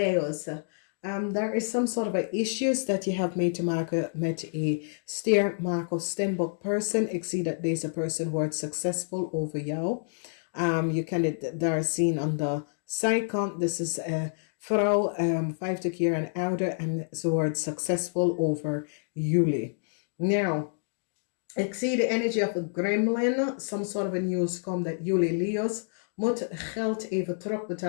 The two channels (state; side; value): silent; right; digital silence